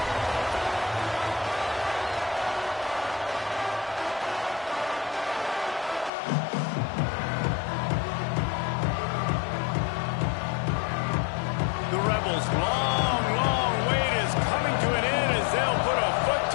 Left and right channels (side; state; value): right; drops out; at 6.1 s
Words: Long wait is coming to an end as they'll put a foot